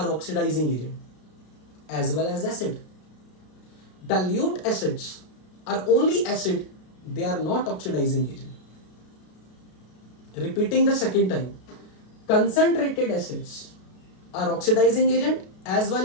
oxidizing agent as well as acid. Dilute acids are only acid, they are not oxidizing agent. Repeating the second time, concentrated acids are oxidizing agent as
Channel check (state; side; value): late; right; 33 ms